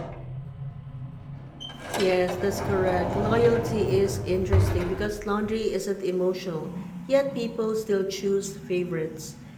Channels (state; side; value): identical; both; correlation 1.00